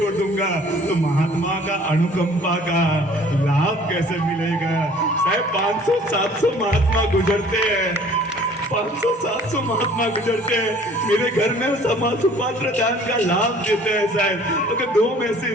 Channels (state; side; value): normal; both; correlation 0.52